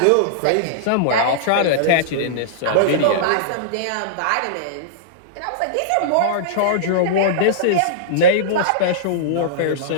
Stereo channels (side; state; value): both; different; correlation -0.03